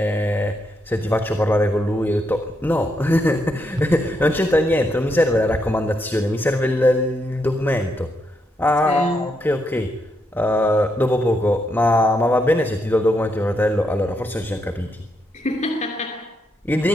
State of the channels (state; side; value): normal; both; correlation 0.79